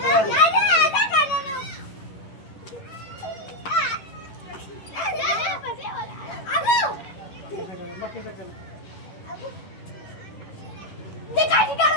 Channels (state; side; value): late; right; 11 ms